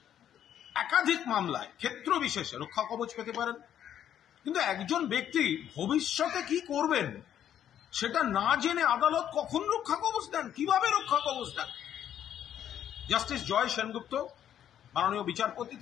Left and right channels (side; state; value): right; quieter; 10.2 dB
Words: একাধিক মামলায় ক্ষেত্র বিশেষে রক্ষা কবচ পেতে পারেন, কিন্তু একজন ব্যক্তি ভবিষ্যতে কি করবেন সেটা না জেনে আদালত কখন রক্ষা কবচ দেন, কিভাবে রক্ষা কবচ দেন? জাস্টিস জয় সেনগুপ্ত মাননীয় বিচারপতি